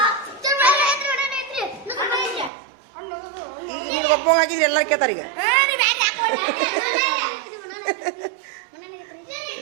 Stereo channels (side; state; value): left; drops out; at 2.5 s